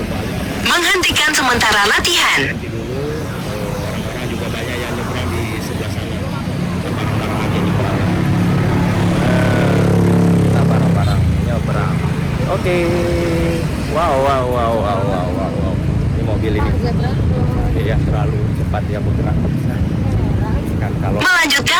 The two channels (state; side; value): identical; both; correlation 1.00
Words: Menghentikan sementara latihan. Nanti dulu orang-orang juga banyak yang nyebrang di sebelah sana. Kita bareng-bareng aja nyebrang. Kita bareng-bareng nyebrang. Oke. Wow. Ini mobil ini. Iya, terlalu cepat ya bergerak. Kan kalau Melanjutkan